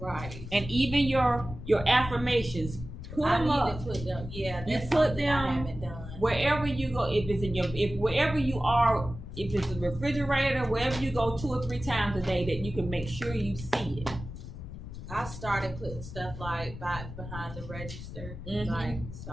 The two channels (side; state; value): left; noise; rumble, 11 dB below the sound